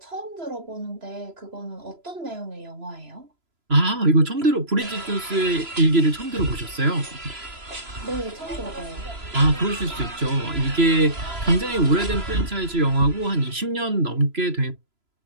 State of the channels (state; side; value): late; left; 3.0 ms